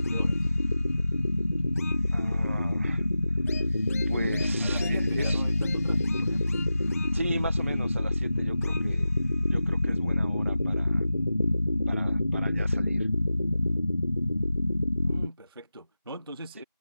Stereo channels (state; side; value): inverted; both; correlation -0.93